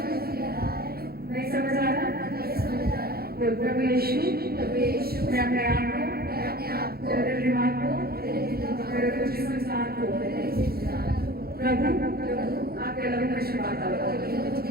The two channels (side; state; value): left; late; 0.45 ms